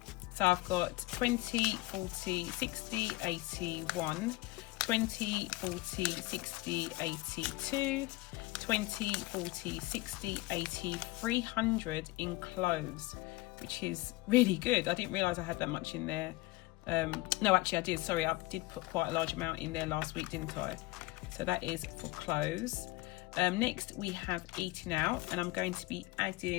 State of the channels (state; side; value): quieter; right; 20.4 dB